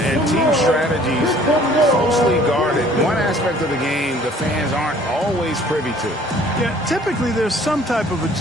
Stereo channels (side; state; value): both; normal; correlation 0.55